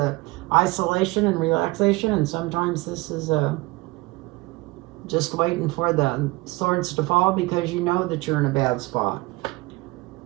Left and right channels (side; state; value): left; quieter; 22.5 dB